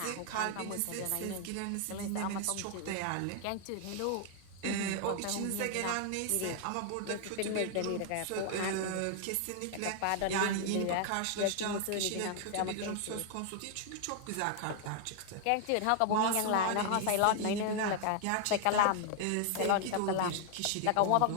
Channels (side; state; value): both; different; correlation 0.00